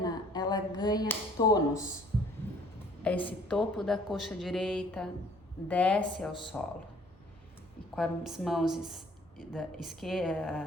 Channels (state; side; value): normal; both; correlation 0.56